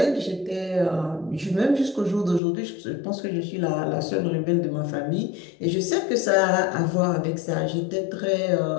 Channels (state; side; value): drops out; right; at 2.4 s